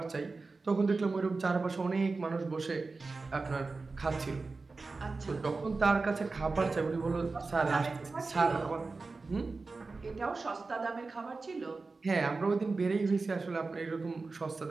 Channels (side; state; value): left; quieter; 3.9 dB